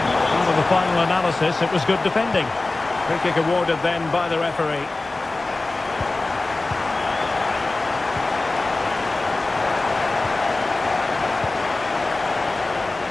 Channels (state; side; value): quieter; right; 3.2 dB